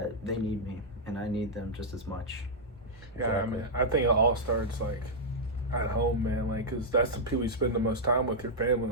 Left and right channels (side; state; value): both; normal; correlation -0.06